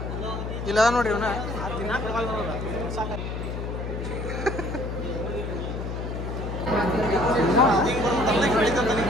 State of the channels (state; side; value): noise; left; hum, 5 dB below the sound